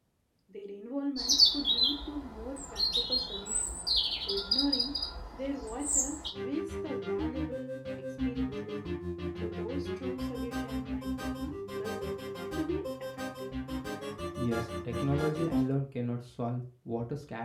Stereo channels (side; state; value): both; identical; correlation 1.00